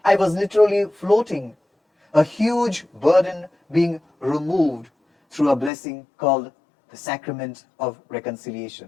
I was literally floating, a huge burden being removed through a blessing called the Sacrament of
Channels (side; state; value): right; drops out; at 5.7 s